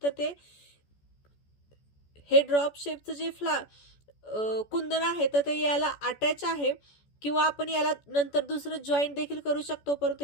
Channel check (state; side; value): late; right; 14 ms